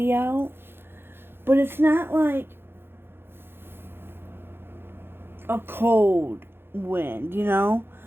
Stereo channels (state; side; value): late; left; 0.11 ms